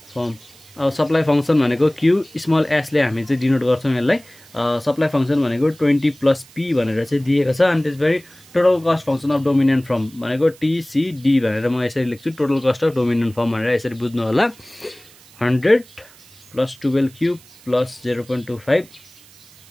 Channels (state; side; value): noise; right; hiss, 25 dB below the sound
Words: अब सप्लाई फंक्सन भनेको q स्मल s ले हामी चाहिँ डिनोट गर्छौं यसलाई। सप्लाई फंक्सन भनेको 20 + p भनेर चाहिँ दिएको छ। अनि त्यसपछि total cost function of dominant firm भनेको tcd भनेर म यसरी लेख्छु। Total cost of dominant form भनेर यसरी बुझ्नु होला। 100 + 12q +